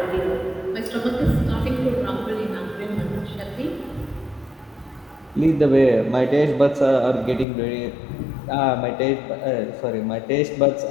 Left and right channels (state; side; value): drops out; right; at 7.5 s